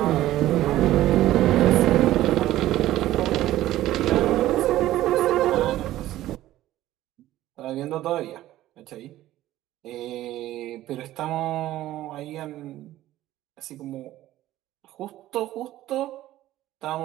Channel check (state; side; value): quieter; left; 14.7 dB